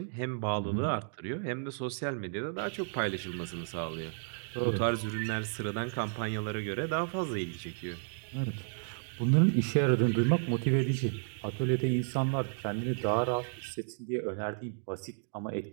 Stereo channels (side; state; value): left; silent; digital silence